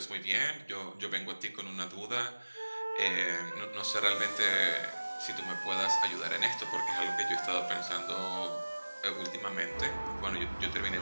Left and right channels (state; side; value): inverted; both; correlation -1.00